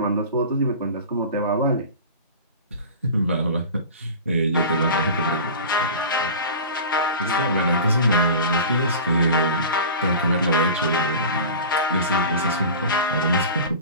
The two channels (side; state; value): both; inverted; correlation -0.34